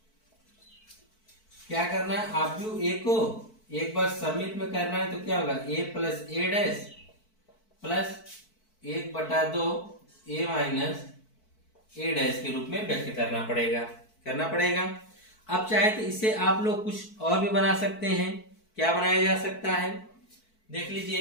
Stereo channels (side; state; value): right; late; 4.5 ms